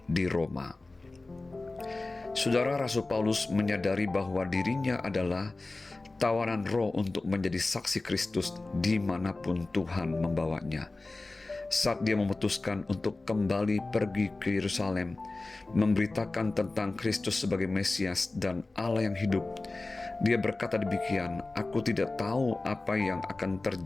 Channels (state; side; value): quieter; right; 3.2 dB